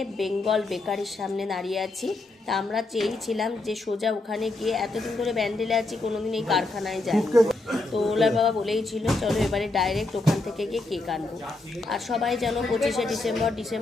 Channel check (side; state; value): right; quieter; 3.1 dB